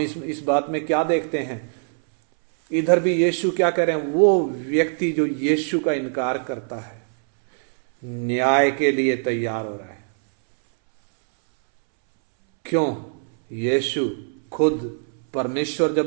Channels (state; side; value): silent; left; 64 dB below the other